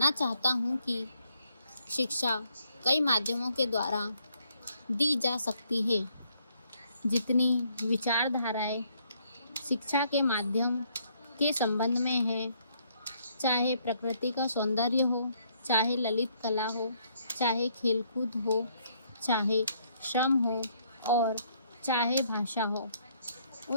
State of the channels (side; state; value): both; inverted; correlation -0.69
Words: चाहता हूँ कि शिक्षा कई माध्यमों के द्वारा दी जा सकती है। जितनी विचारधाराएं शिक्षा के माध्यम के संबंध में है, चाहे प्रकृति का सौंदर्य हो, चाहे ललित कला हो, चाहे खेलकूद हो, चाहे श्रम हो और चाहे भाषा हो,